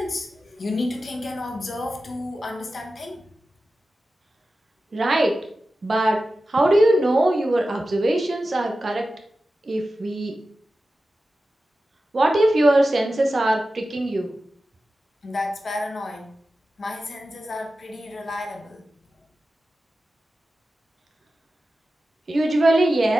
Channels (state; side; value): normal; both; correlation 0.93